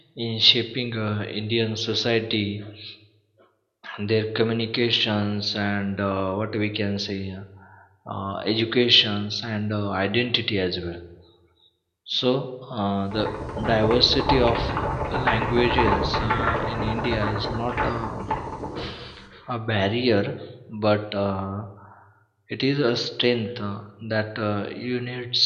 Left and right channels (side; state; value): both; identical; correlation 1.00